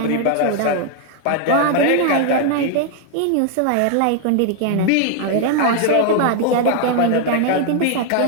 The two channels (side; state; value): both; different; correlation 0.00